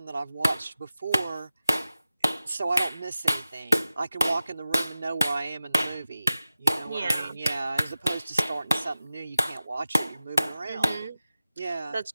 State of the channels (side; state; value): both; inverted; correlation -0.95